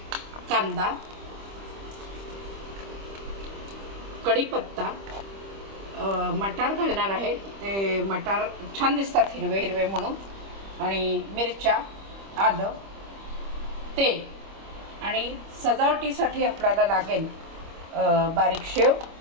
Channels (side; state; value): left; late; 25 ms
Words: कांदा, कढीपत्ता, मटार घालणार आहे। ते मटार छान दिसतात हिरवे हिरवे म्हणून, आणि मिरच्या, आलं, तेल, आणि सजावटीसाठी आपल्याला लागेल बारीक शेव